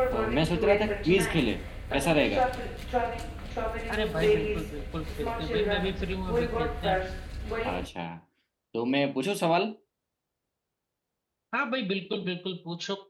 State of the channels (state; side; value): identical; both; correlation 1.00